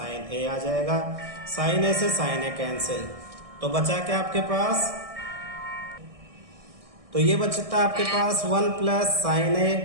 A आ जाएगा। साइन A से साइन A कैंसिल, तो बचा क्या आपके पास? तो ये बचता आपके पास 1 plus sine A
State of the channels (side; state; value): left; late; 1.6 ms